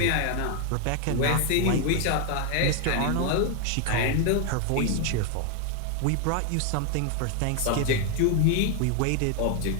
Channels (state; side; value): different; both; correlation 0.01